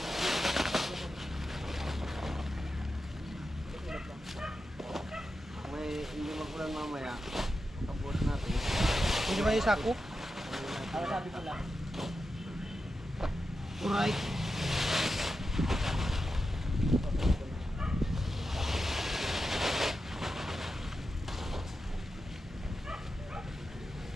May hindi magulan mamaya. Tapos natin. Hindi ba yung sako? Ano sabi ko lang? Alright.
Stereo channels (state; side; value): normal; both; correlation 0.89